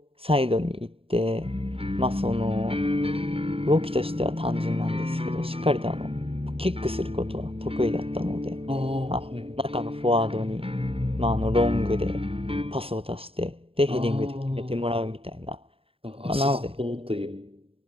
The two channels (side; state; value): left; late; 0.27 ms